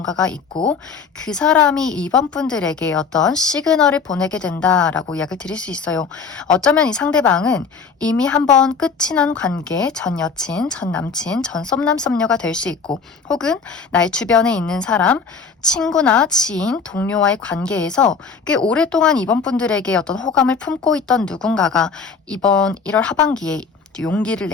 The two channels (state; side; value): quieter; right; 5.3 dB